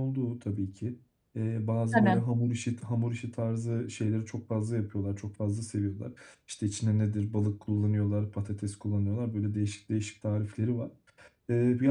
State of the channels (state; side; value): identical; both; correlation 1.00